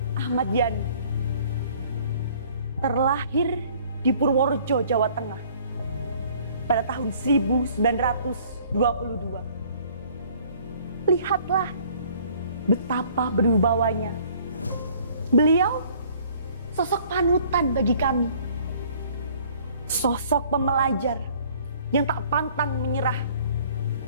Ahmad Yani, terlahir di Purworejo, Jawa Tengah pada tahun 1922. Lihatlah betapa berwibawanya. Beliau sosok panutan bagi kami. Sosok pembelajar yang tak pantang menyerah.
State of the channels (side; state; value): both; inverted; correlation -0.56